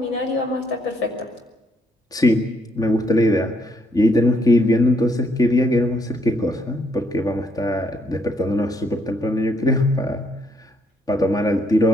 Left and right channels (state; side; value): normal; both; correlation 0.72